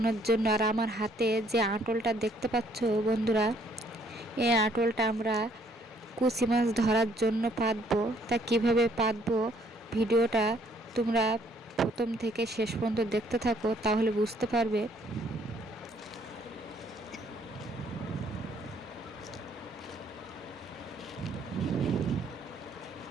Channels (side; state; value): both; normal; correlation 0.64